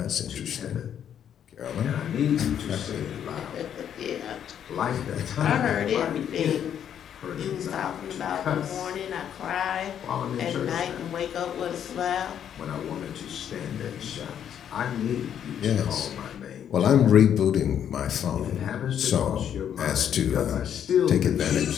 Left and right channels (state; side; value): quieter; right; 9.2 dB